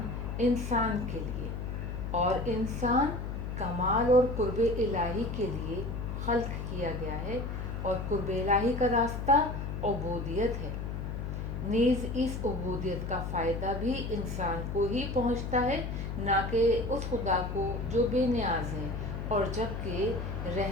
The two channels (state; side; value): noise; left; hum, 5 dB below the sound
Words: انسان کے لیے اور انسان کمال اور قرب الہی کے لیے خلق کیا گیا ہے، اور قرب الہی کا راستہ عبودیت ہے. نیز اس عبودیت کا فائدہ بھی انسان کو ہی پہنچتا ہے، نہ کہ اس خدا کو جو بے نیاز ہے، اور جبکہ